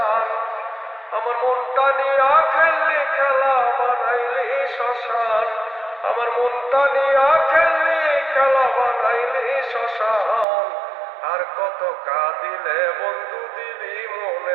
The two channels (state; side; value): drops out; left; at 10.5 s